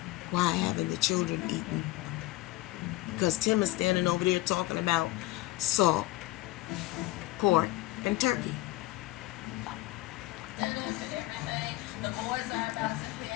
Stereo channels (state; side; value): quieter; right; 18.1 dB